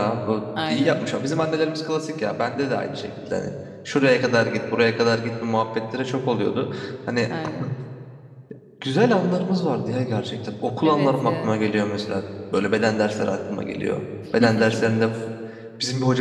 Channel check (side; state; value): both; identical; correlation 1.00